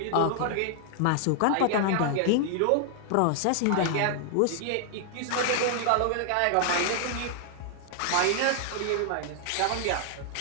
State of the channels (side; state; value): both; different; correlation 0.00